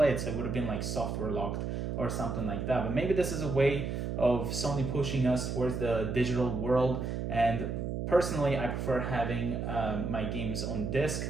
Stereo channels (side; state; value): right; noise; hum, 3 dB below the sound